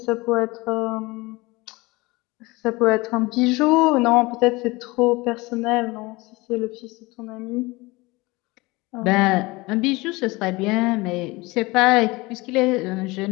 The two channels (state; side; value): quieter; right; 22.9 dB